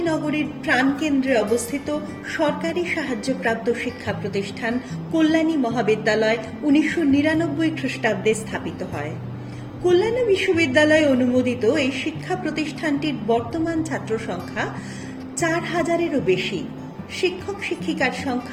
নগরীর প্রাণকেন্দ্রে অবস্থিত সরকারি সাহায্যপ্রাপ্ত শিক্ষা প্রতিষ্ঠান কল্যাণী মহাবিদ্যালয় 1999 খ্রিস্টাব্দে স্থাপিত হয়। কল্যাণী বিশ্ববিদ্যালয় অনুমোদিত এই শিক্ষা প্রতিষ্ঠানটির বর্তমান ছাত্র সংখ্যা 4000-এরও বেশি, শিক্ষক শিক্ষিকার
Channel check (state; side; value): identical; both; correlation 1.00